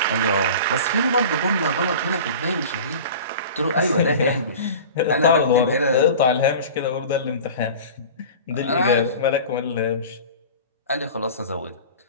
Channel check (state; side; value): inverted; both; correlation -0.37